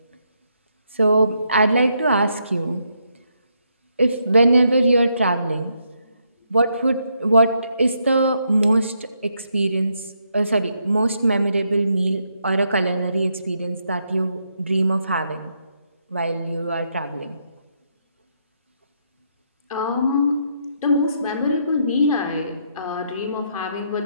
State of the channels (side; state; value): both; inverted; correlation -0.77